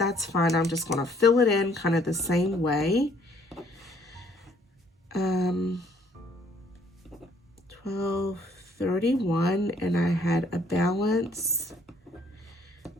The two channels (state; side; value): normal; both; correlation 0.62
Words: fine. I'm just going to fill it in kind of the same way. 1231, and I had a balance